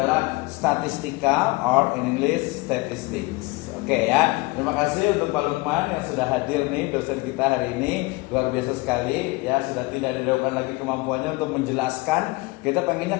statistika or in English statistics. Oke ya. Terima kasih untuk Pak Lukman yang sudah hadir nih, dosen kita hari ini. Luar biasa sekali ya, sudah tidak diragukan lagi kemampuannya untuk menjelaskan. Kita pengennya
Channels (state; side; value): quieter; right; 23.6 dB